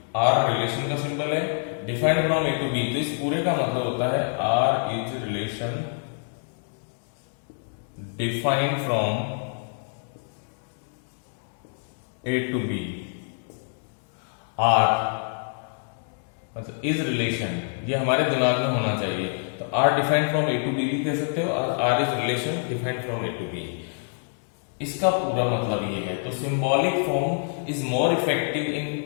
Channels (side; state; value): right; silent; digital silence